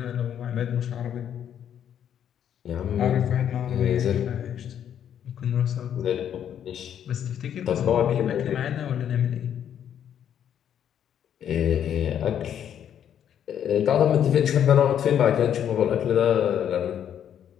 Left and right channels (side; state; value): right; quieter; 9.4 dB